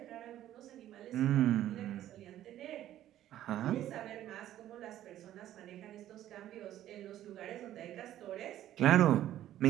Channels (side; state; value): left; quieter; 12.6 dB